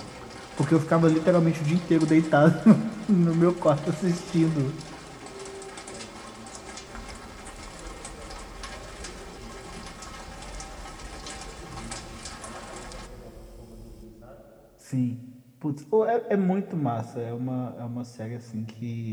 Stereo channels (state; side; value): identical; both; correlation 1.00